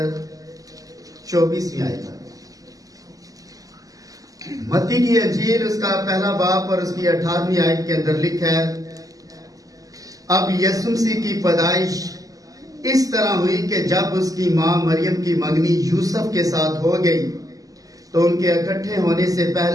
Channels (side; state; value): left; late; 0.17 ms